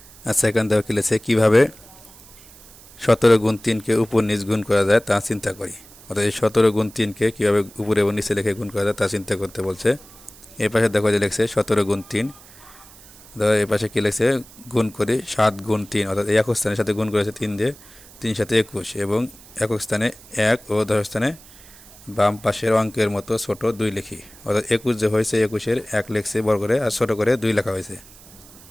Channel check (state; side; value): noise; right; hiss, 22 dB below the sound